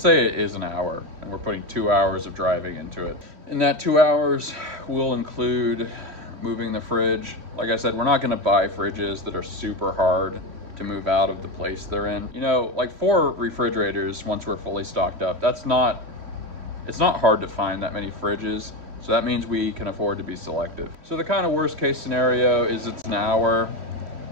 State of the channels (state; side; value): late; left; 3.1 ms